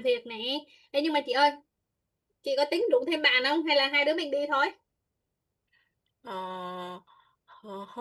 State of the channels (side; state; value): both; identical; correlation 1.00